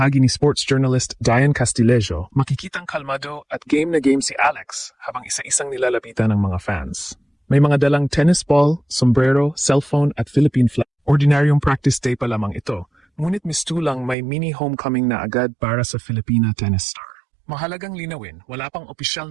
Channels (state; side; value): drops out; left; at 14.2 s